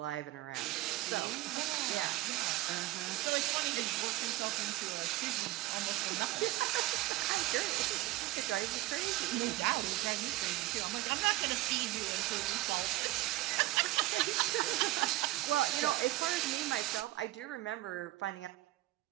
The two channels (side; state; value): left; quieter; 17.9 dB